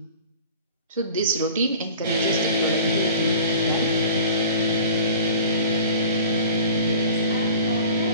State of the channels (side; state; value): both; inverted; correlation -0.44